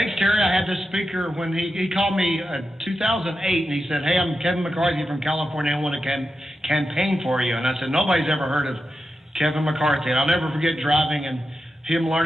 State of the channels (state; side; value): normal; both; correlation 0.89